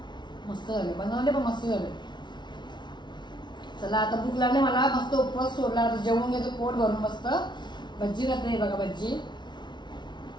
मस्त झाले बनवले पण मस्त झाले. चला आता भूक लागली मला, मस्त उपवास सोडला, आता जेवून घेतो पोट भरून मस्त. भज्जी घातली बघा, भज्जी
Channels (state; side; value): late; right; 0.21 ms